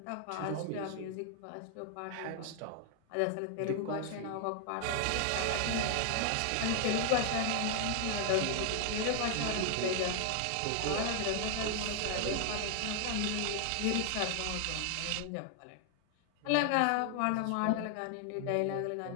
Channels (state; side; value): different; both; correlation 0.00